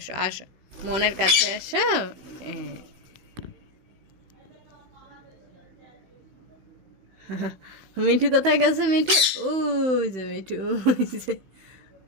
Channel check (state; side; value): late; left; 16 ms